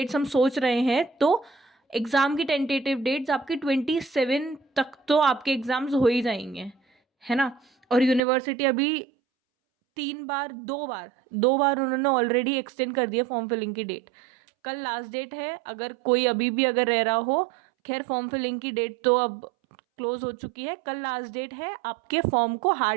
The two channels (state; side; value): drops out; left; at 8.2 s